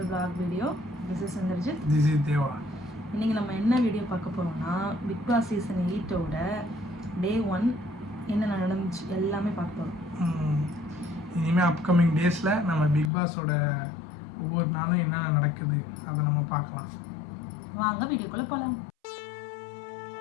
Vlog video. This is Sandarjit. This is Deva. இன்னைக்கு நம்ம என்ன video பார்க்க போறோம்னா பிக் பாஸ் சீசன் 8 ஓட டே 1 என்ன நடந்துச்சு எல்லாமே பார்க்க போறோம். இனிமே அப்கமிங் டேஸ்ல நம்ம பிக் பாஸோட ஒவ்வொரு நாளும் என்ன நடக்குது அதை நம்ம பார்க்கலாம். வாங்க வீடியோக்குள்ள போலாம்.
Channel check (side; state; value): right; drops out; at 13.1 s